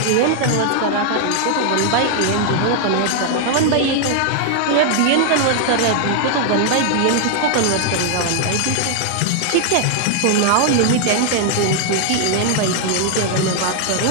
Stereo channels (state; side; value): different; both; correlation 0.00